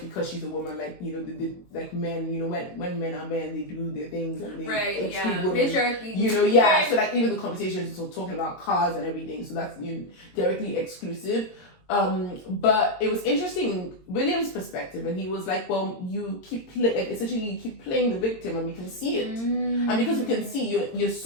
because she's a woman, like, you know, like men, you know, when men are men, they do their things and they exclude women. Patriarchy. You know, so like even the conversations are talking about cars and everything, so that's, you know, directly exclusive. But it was interesting, William's perspective, and he was like, well, you keep essentially you keep playing the victim, and we can see it. And because we can see you're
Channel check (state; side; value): late; right; 22 ms